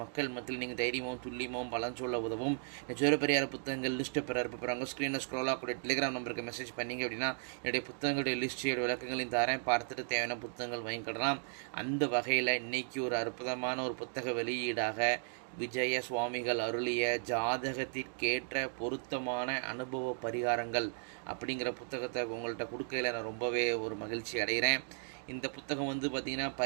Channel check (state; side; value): silent; left; digital silence